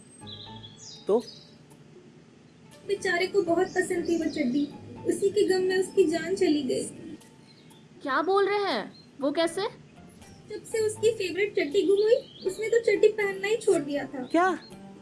तो बेचारे को बहुत पसंद थी वो चड्डी, उसी के गम में उसकी जान चली गई। क्या बोल रहे हैं? वो कैसे? जब से उसकी फेवरेट चड्डी गुम हुई, उसने तो चड्डी पहनना ही छोड़ दिया था। क्या?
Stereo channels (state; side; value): identical; both; correlation 1.00